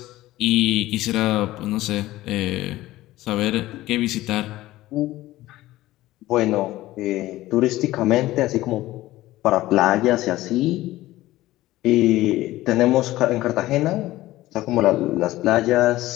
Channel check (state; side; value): quieter; right; 16.5 dB